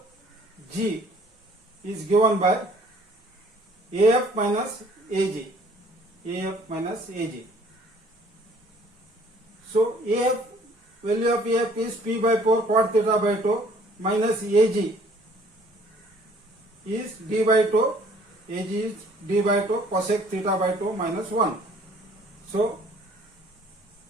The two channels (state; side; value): normal; both; correlation 0.57